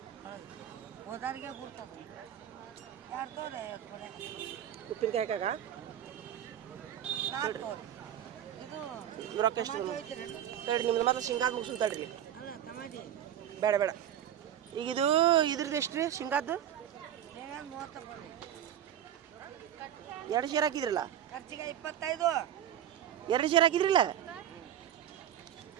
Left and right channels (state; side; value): quieter; left; 10.6 dB